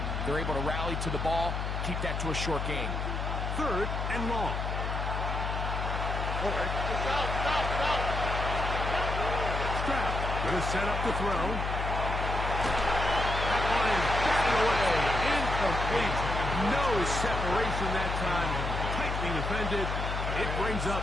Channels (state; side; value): noise; left; hum, 2 dB below the sound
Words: They're able to rally to the ball, keep that to a short game. 3rd and long. Stroud going to set up the throw. That one is batted away. Incomplete. No separation that time. Tightly defended. It brings up